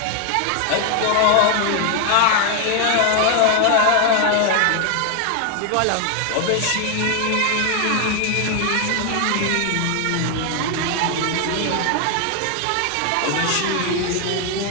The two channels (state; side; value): different; both; correlation 0.00